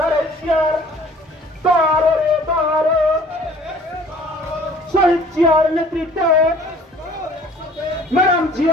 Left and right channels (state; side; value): normal; both; correlation 0.52